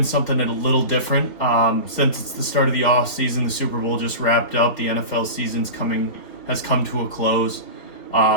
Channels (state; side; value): late; right; 4.1 ms